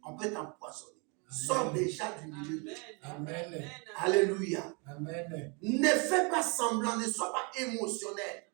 On peut t'empoisonner. Sors déjà du milieu d'eux. Amen. Alléluia. Amen. Ne fais pas semblant, ne sois pas émotionnel.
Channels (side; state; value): left; quieter; 32.7 dB